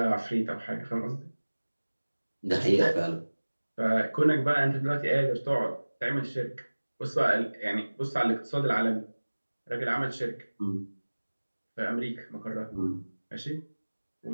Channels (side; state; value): both; inverted; correlation -1.00